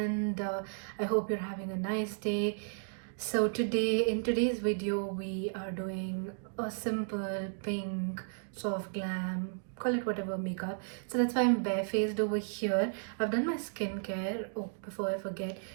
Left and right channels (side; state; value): left; silent; digital silence